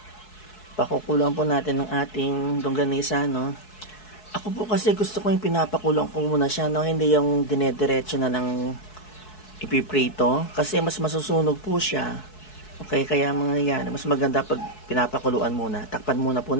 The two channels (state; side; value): late; right; 4.7 ms